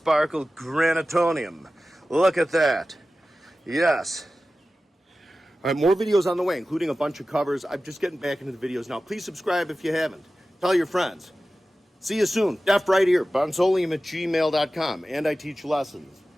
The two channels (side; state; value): both; normal; correlation 0.95